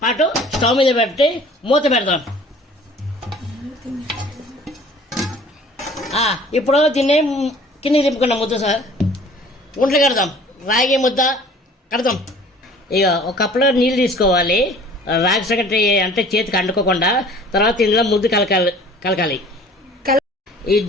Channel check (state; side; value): normal; both; correlation 0.49